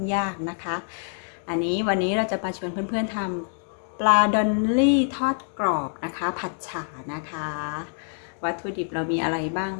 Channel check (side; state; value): right; silent; 61 dB below the other